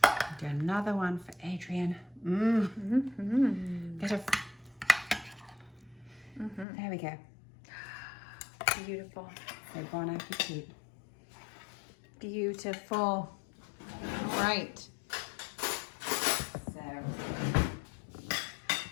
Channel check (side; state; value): right; drops out; at 6.7 s